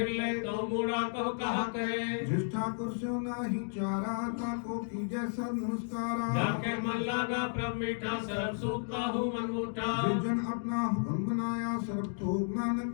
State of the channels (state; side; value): silent; right; digital silence